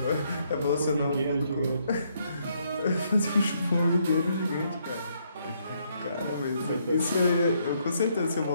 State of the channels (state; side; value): inverted; both; correlation -0.72